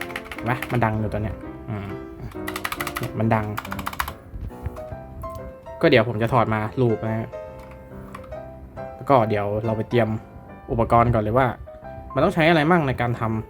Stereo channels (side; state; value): both; identical; correlation 1.00